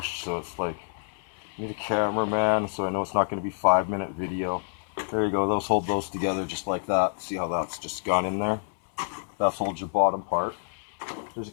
so it's like, I need a cameraman, so I know it's not going to be 5-minute video. There you go, those hold those together just like that. See how that's just gone in there? That holds your bottom part. There's a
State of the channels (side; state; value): right; silent; 60 dB below the other